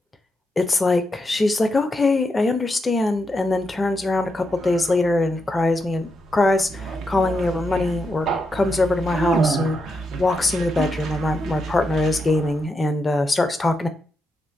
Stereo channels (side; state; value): both; normal; correlation 0.84